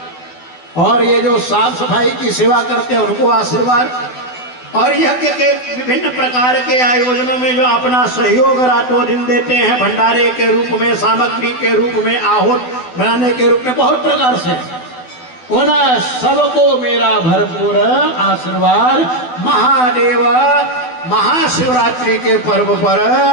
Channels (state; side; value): late; right; 12 ms